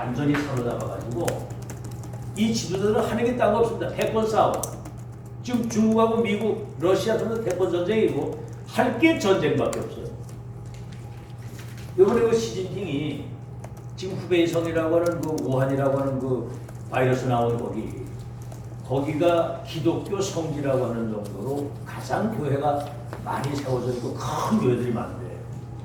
사로잡아가지고 이 지도자들은 하는 게 딴 거 없습니다. 패권 싸움. 지금 중국하고 미국, 러시아 전부 패권 전쟁이고 할 게 전쟁밖에 없어요. 이번에 그 시진핑이 지금 후베이성이라고 하는 그 우한이라고 하는 그 바이러스 나온 거기가 기독교 성지라고 하는 정도로 가장 교회가 많이 세워져 있고 큰 교회들이 많은데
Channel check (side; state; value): both; identical; correlation 1.00